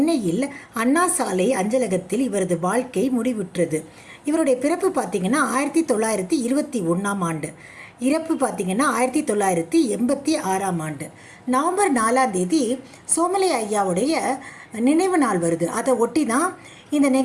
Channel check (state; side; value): identical; both; correlation 1.00